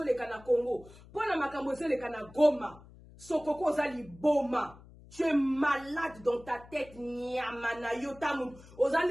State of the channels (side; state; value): left; noise; hum, 21 dB below the sound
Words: le kana Congo pour na makambo zo le kana Goma sokoko za liboma. Tu es malade dans ta tête, nyamana yotamu.